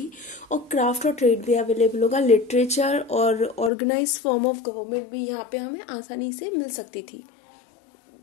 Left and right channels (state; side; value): drops out; right; at 3.7 s